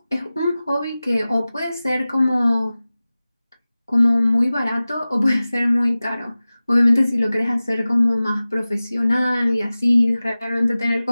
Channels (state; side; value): inverted; both; correlation -0.97